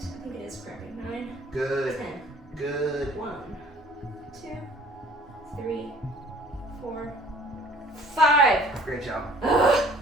it is cramping. 9, Good. 10. Good. 1, 2, 3, 4, 5. Great job. Ugh.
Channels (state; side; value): normal; both; correlation 0.53